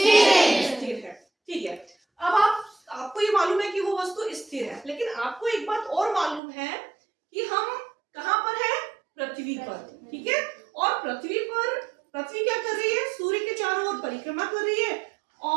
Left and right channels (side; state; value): left; drops out; at 6.4 s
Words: स्थिर है, ठीक है। अब आपको ये मालूम है कि वो वस्तु स्थिर है, लेकिन आपको एक बात और मालूम है कि हम कहाँ पर है? पृथ्वी पर, ठीक है। और पृथ्वी क्या कर रही है? सूर्य के चारों ओर परिक्रमा कर रही है।